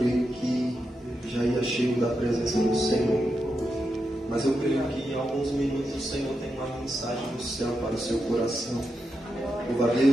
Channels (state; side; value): normal; both; correlation 0.86